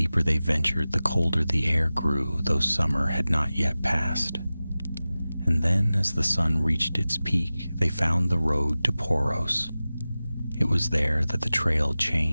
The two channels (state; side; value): inverted; both; correlation -0.96